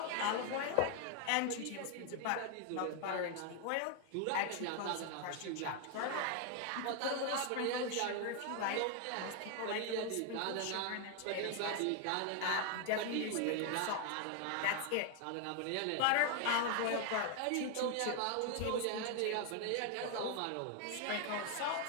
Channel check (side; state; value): both; different; correlation 0.01